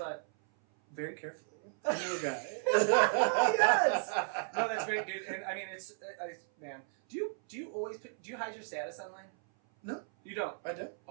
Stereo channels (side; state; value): left; silent; 55 dB below the other